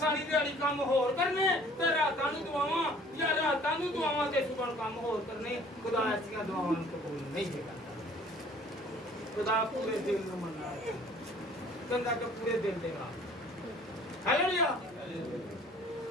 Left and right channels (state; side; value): normal; both; correlation 0.53